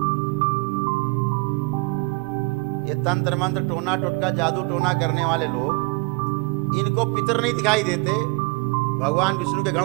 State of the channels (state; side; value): quieter; left; 27.8 dB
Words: ये तंत्र मंत्र टोना टोटका जादू टोना करने वाले लोग, इनको पितर नहीं दिखाई देते, भगवान विष्णु के गण